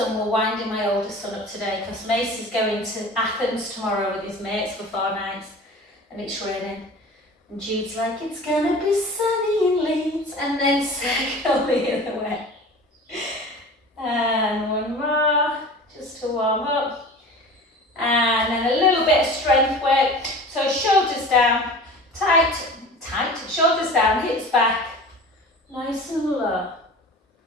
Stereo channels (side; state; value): both; normal; correlation 0.38